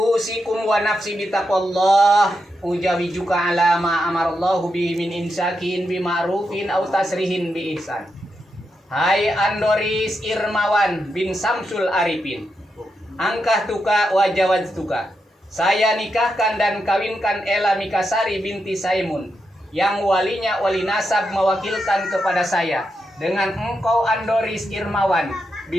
wa nafsi bitaqwallah ujawijuka ala ma amarallahu bihi min insakin bima'rufin aw tasrihin bi ihsan. Hai Andoris Irmawan bin Samsul Arifin, angkah tuka wa jawaz tuka. Saya nikahkan dan kawinkan Ella Mikasari binti Saimun yang walinya wali nasab mewakilkan kepada saya dengan engkau Andoris Irmawan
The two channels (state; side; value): normal; both; correlation 0.85